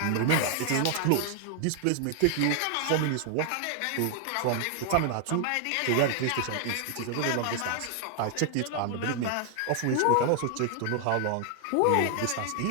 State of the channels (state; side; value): different; both; correlation 0.00